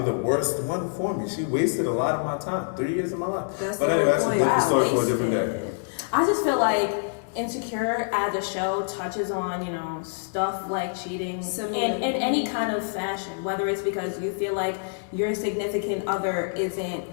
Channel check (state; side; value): silent; right; digital silence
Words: the worst one for me. She wasted a lot of my time. 3 years of my life. That's But the anyway, whole that's a point. different Wow, story for a different day. wasted. I just feel like Insecure as a show touches on, stuff like cheating Similar. in any kind of fashion, whether it's because you feel like your significant other isn't